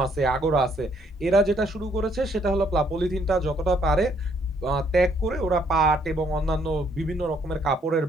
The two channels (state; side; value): normal; both; correlation 0.67